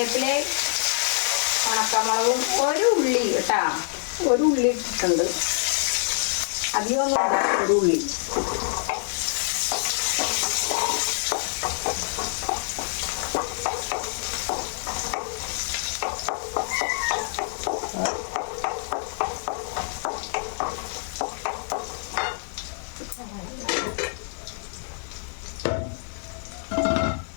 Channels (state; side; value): silent; right; digital silence